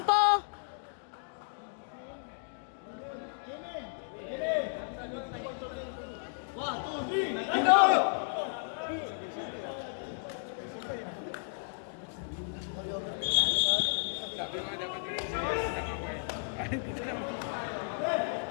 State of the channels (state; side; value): silent; right; digital silence